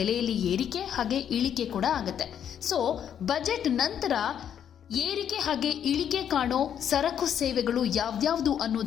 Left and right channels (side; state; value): right; quieter; 9.1 dB